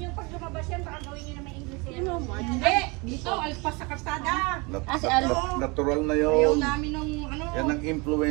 pag lumabas yan, baka gawin nyo na may English yan. Ano, March? Hindi! Dito, alpas sa kalsada. Natural na Ayaw yun. namin nung ano. Yan ang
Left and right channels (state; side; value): quieter; left; 28.0 dB